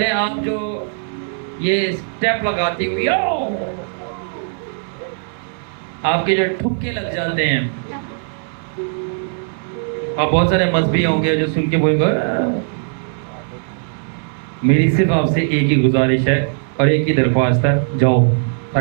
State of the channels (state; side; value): silent; left; 67 dB below the other